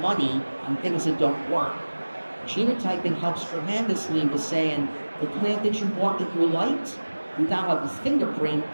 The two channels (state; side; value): inverted; both; correlation -1.00